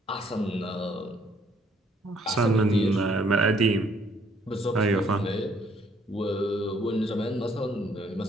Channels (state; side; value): normal; both; correlation 0.65